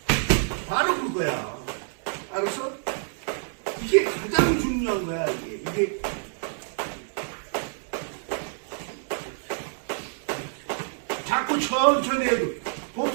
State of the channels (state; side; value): silent; left; digital silence